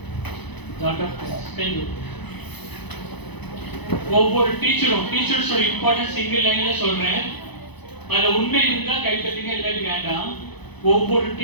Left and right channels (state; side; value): late; right; 0.99 ms